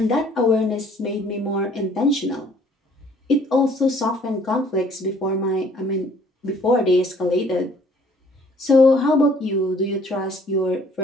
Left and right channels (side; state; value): both; normal; correlation 0.58